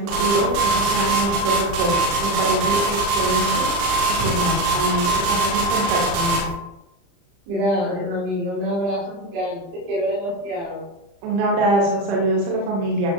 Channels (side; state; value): left; late; 35 ms